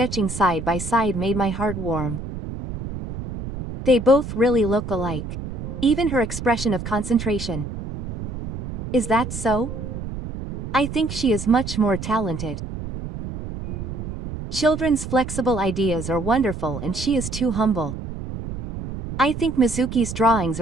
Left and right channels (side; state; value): right; noise; rumble, 8 dB below the sound